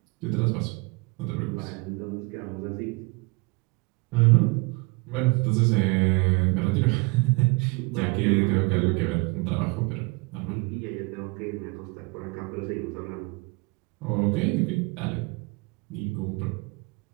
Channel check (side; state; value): left; quieter; 27.5 dB